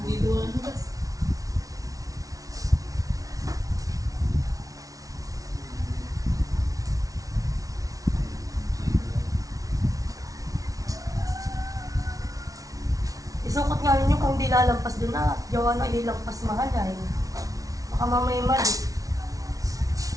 Isukot nga ninyo kung di lalampas doon na. Gawa na ililampas mahal ay. Baka mamaya mali.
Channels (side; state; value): left; late; 0.17 ms